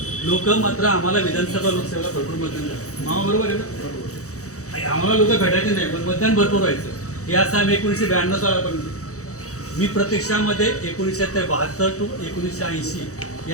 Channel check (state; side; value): late; right; 0.65 ms